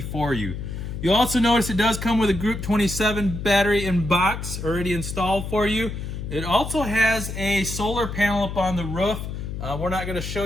for you. You'll also notice it does come with a Group 27 battery in box already installed for you. It also has a solar panel up on the roof. We're not going to show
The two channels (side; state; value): left; noise; hum, 6 dB below the sound